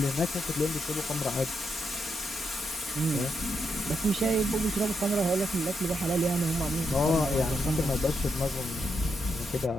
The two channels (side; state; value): both; normal; correlation 0.81